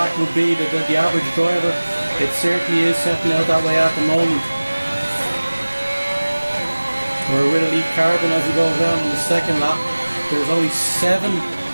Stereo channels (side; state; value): both; inverted; correlation -1.00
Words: would be, the average driver. It certainly is setting out that way at the moment. We're with Elite Carbon as he goes down on the second lap. There's only